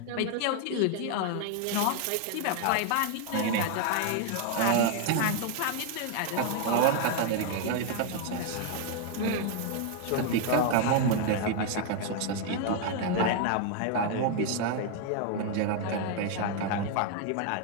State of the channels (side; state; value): both; different; correlation 0.00